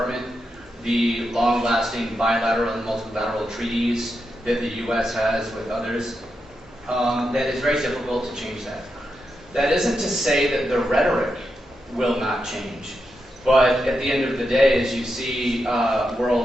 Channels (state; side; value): normal; both; correlation 0.86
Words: the long-lasting bilateral and multilateral treaties that the U.S. has with others, that it's very difficult to change that. That isn't to say that the rhetoric will not change, but at the end of the day, as you see